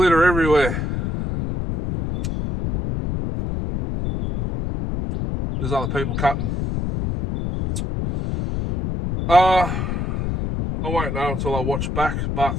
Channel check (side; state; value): left; noise; rumble, 2 dB below the sound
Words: everywhere. There's other people cutting. I won't know until I watch back,